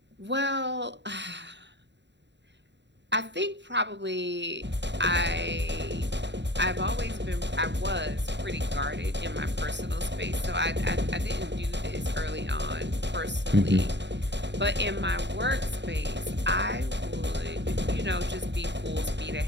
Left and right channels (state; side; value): late; left; 0.52 ms